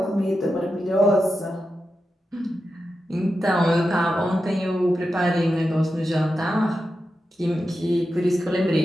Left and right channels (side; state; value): both; normal; correlation 0.89